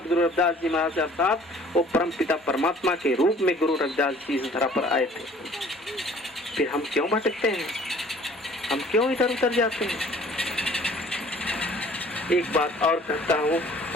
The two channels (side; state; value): both; normal; correlation 0.53